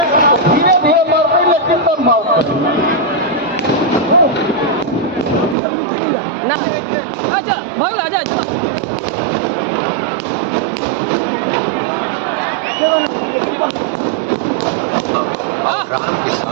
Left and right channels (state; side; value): drops out; left; at 5.6 s